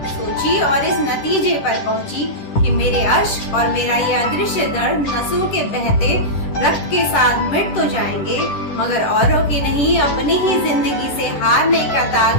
और इस नतीजे पर पहुंची कि मेरे अश्क और मेरा ये अदृश्य दर्द नसों के बहते रक्त के साथ मिट तो जाएंगे मगर औरों की नहीं अपनी ही जिंदगी से हारने का दाग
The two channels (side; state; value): right; late; 10 ms